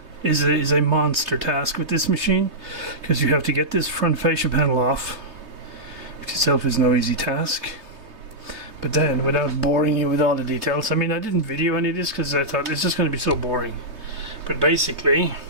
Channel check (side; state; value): left; late; 3.2 ms